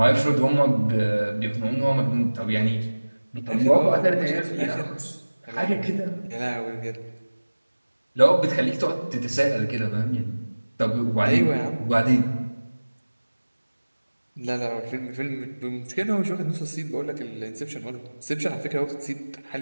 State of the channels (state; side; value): inverted; both; correlation -1.00